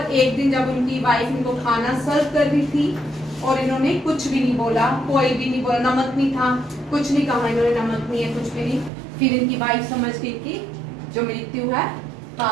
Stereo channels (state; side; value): drops out; left; at 8.9 s